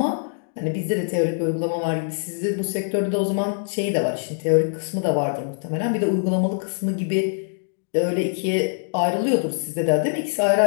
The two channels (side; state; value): right; silent; digital silence